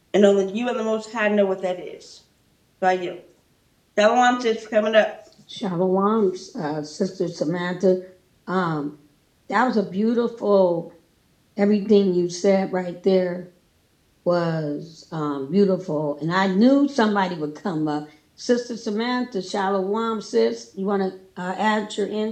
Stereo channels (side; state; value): both; identical; correlation 1.00